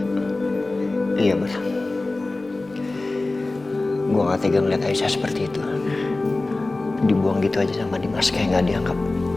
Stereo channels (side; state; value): right; quieter; 3.1 dB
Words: iya Bar. Gue gak tega ngeliat Aisyah seperti itu. Dibuang gitu aja sama Dimas kayak gak dianggap.